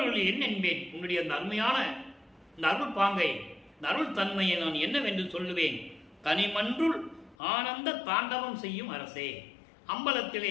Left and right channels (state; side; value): drops out; right; at 7.4 s